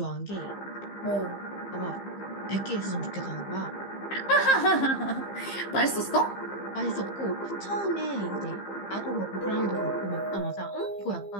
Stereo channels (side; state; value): right; late; 15 ms